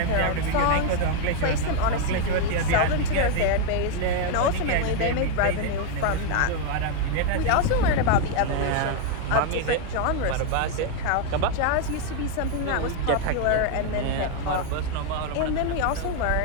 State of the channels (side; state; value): both; different; correlation 0.01